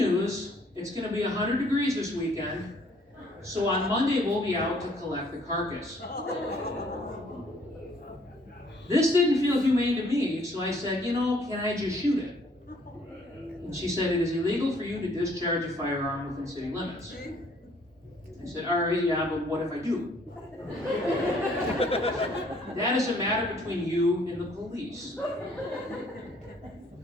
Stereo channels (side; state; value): both; normal; correlation 0.62